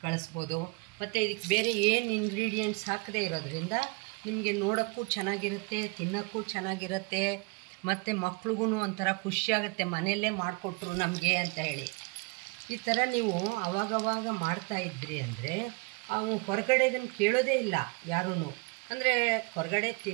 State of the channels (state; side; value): quieter; left; 29.3 dB